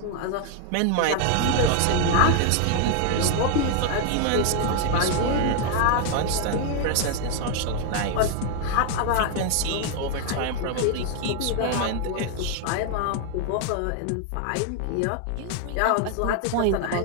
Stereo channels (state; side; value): different; both; correlation 0.01